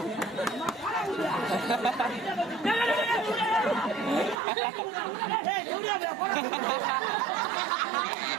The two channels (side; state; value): left; drops out; at 4.4 s